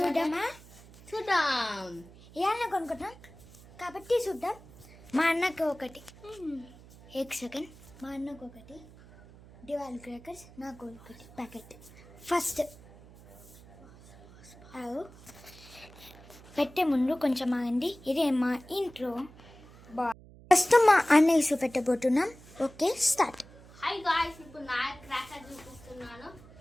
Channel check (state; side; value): noise; right; hum, 21 dB below the sound